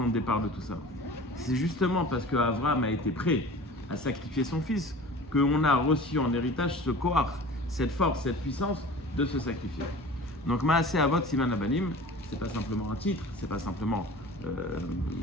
de départ de tout ça. C'est justement parce qu'Abraham a été prêt à sacrifier son fils qu'on a reçu en héritage ce koach, cette force, cette puissance de se sacrifier. Donc Maaseh Avot Siman Abanim, c'est pas simplement un titre, c'est pas simplement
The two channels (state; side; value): normal; both; correlation 0.40